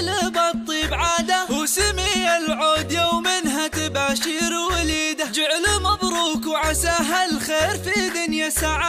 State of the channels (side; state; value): both; identical; correlation 1.00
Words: الطيب عاده، وسمي العود يومها تباشر وليده. جعل مبروك وعساها الخير في دنيا